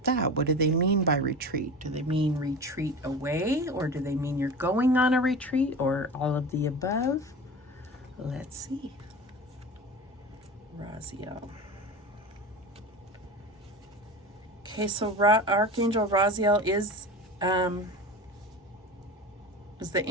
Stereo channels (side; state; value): both; normal; correlation 0.31